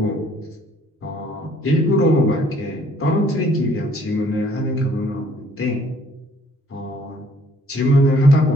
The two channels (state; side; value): normal; both; correlation 0.60